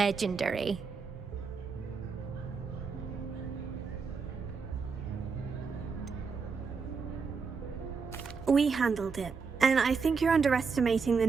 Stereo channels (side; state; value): left; quieter; 5.2 dB